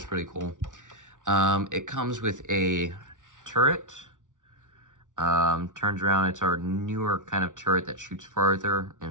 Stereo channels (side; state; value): left; late; 0.87 ms